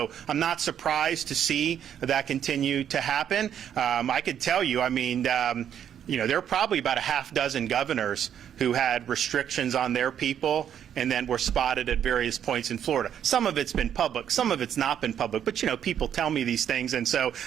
I'm not surprised to see that continue to happen. I could tell you, I mean, there are probably about a half dozen governors who had restrictions on their people and then were spotted at various points in Florida. Some of it's been public, some of it's not been public, but people tell me these things, and so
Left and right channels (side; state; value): left; quieter; 9.3 dB